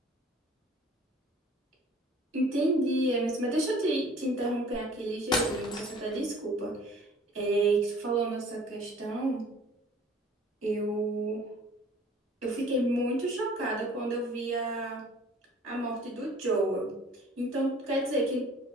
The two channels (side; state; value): both; normal; correlation 0.51